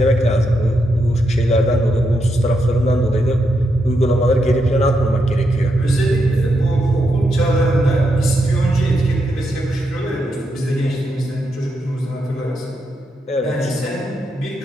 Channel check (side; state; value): both; normal; correlation 0.82